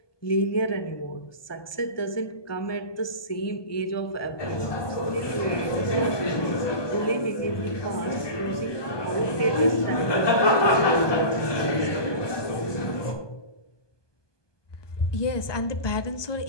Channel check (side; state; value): right; late; 1.2 ms